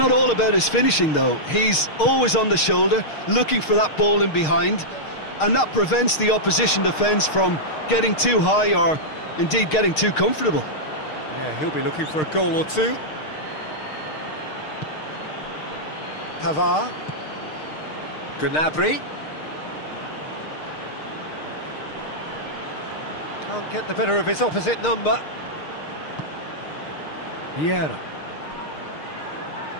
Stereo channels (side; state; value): right; late; 6.5 ms